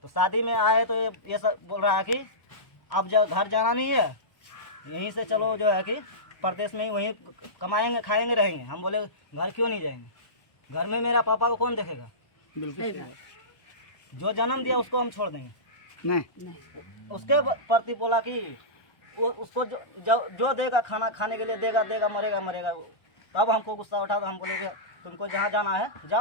तो शादी में आए तो ये सब बोल रहा है कि अब जब घर जाना नहीं है, यहीं से चलो जो है कि प्रदेश में ही वहीं कमाएंगे खाएंगे रहेंगे। हम बोले घर क्यों नहीं जाएंगे, घर में मेरा पापा को कौन देखेगा। जो जन्म दिया उसको हम छोड़ देंगे नहीं। उसके प्रति बोला कि वो उसको जो देगा खाना खाने के लिए देगा मरेगा। तब हमको गुस्सा उठा तो हम बोले कि तुमको जहाँ जाना है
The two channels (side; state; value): right; late; 1.2 ms